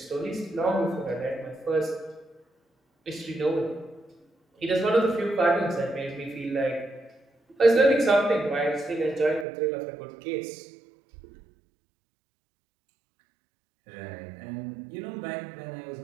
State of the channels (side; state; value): left; drops out; at 9.5 s